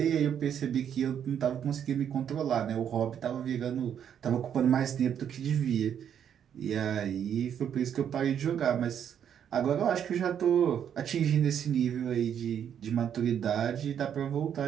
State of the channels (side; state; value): left; quieter; 8.8 dB